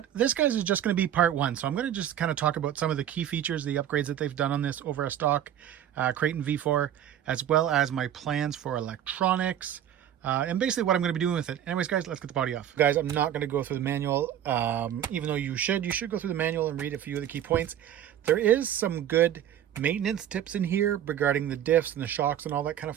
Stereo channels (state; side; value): quieter; left; 10.7 dB